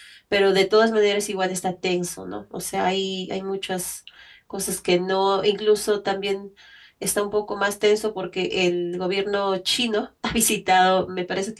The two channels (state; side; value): identical; both; correlation 1.00